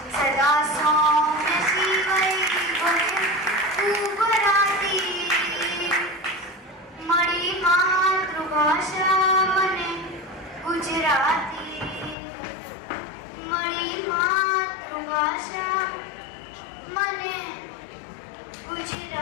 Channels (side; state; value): right; drops out; at 12.2 s